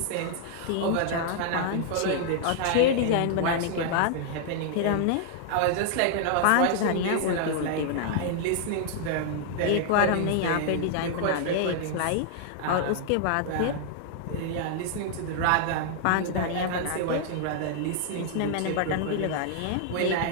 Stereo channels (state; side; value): different; both; correlation -0.01